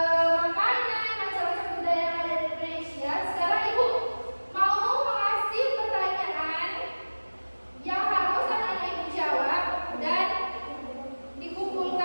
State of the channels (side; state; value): both; inverted; correlation -1.00